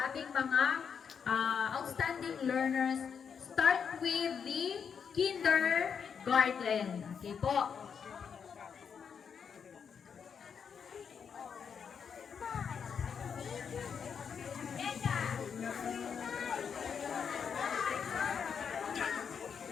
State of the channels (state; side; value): quieter; right; 6.8 dB